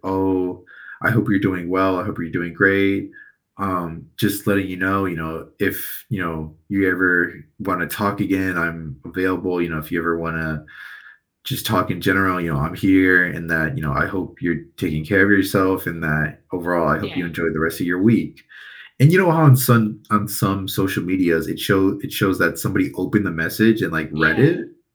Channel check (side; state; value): both; identical; correlation 1.00